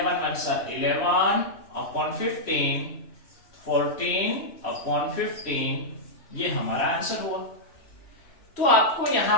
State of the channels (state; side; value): late; right; 3.1 ms